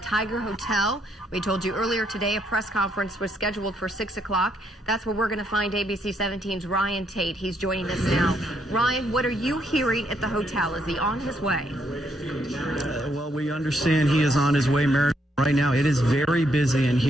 Hotel. We told you earlier today a press conference was scheduled for 6 o'clock. That's where we're going to find ABC 17's Ryan Tate. He's joining us now. Ryan, what are you hearing at the hotel? Is he on his way? Well, we understand he is on his way, Mary. Right now, it is very busy in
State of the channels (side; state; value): both; normal; correlation 0.74